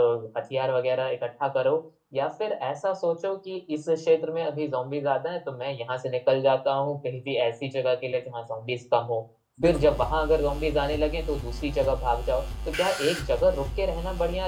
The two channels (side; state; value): both; identical; correlation 1.00